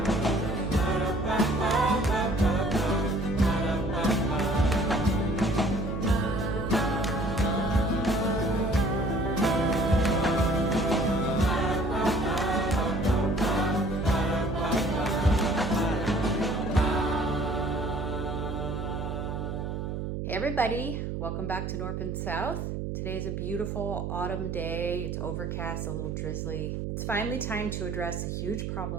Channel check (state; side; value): noise; right; hum, 4 dB below the sound